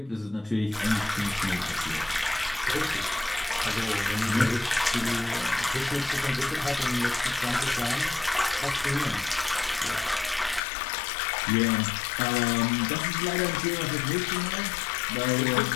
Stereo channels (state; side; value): drops out; right; at 10.6 s